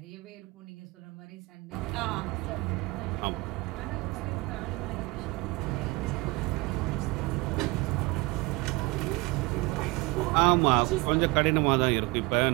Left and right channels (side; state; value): left; quieter; 24.2 dB